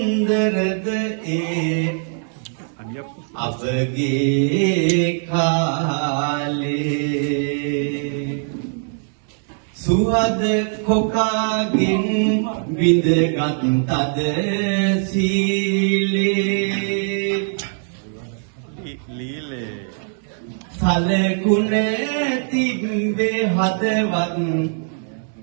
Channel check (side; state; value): left; silent; 59 dB below the other